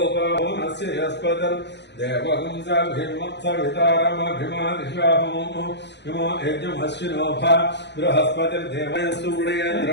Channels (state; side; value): late; right; 0.50 ms